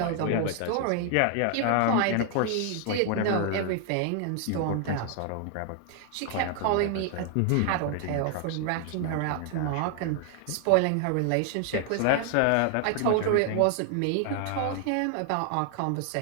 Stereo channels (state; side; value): different; both; correlation 0.00